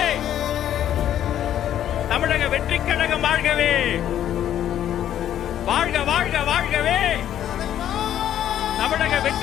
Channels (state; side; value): quieter; right; 11.0 dB